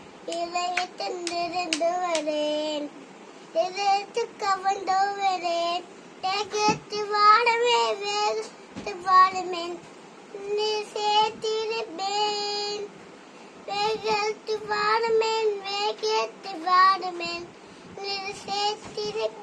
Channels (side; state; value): both; identical; correlation 1.00